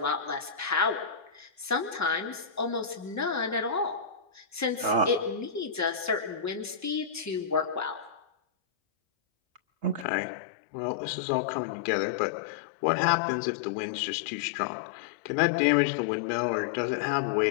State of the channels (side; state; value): right; drops out; at 10.1 s